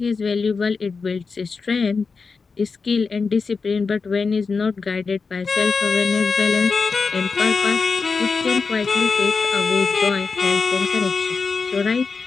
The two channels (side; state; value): right; quieter; 4.8 dB